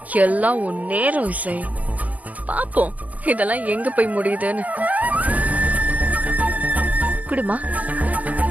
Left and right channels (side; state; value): left; late; 0.078 ms